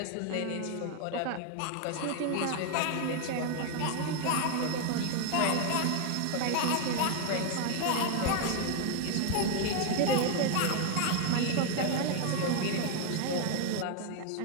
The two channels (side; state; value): both; different; correlation 0.00